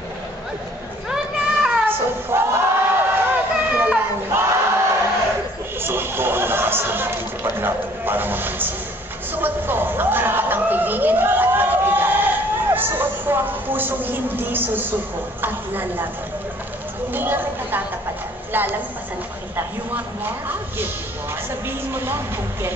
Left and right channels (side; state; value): both; normal; correlation 0.57